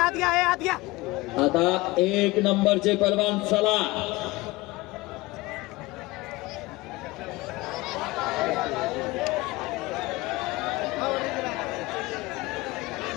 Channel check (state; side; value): quieter; right; 21.1 dB